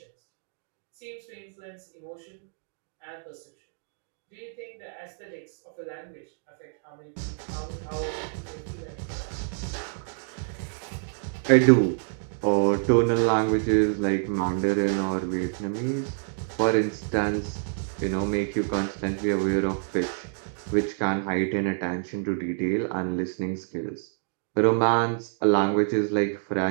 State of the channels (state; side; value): silent; left; digital silence